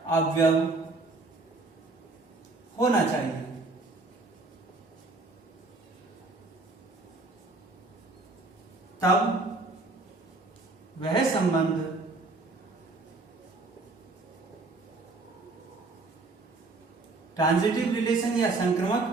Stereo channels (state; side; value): quieter; left; 3.4 dB